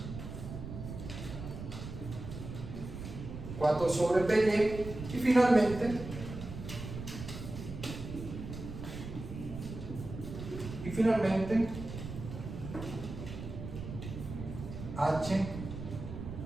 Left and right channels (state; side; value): noise; right; rumble, 9 dB below the sound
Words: 4 sobre PY, y finalmente H